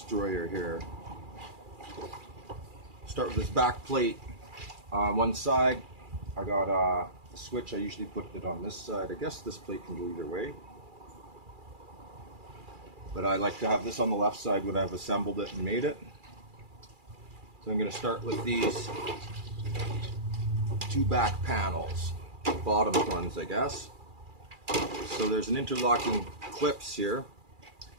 here. Start with this back plate on one side. I got a switch. I usually put it on this side. I guess this plate can go either way, but I like to have this on the left side when I've assembled it and made it. So I'm going to start with these two back panels, bottom ones I guess. So there's an interlocking clips here.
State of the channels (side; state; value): left; late; 2.4 ms